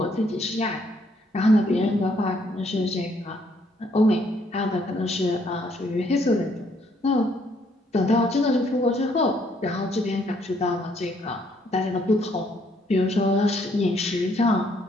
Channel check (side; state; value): both; normal; correlation 0.68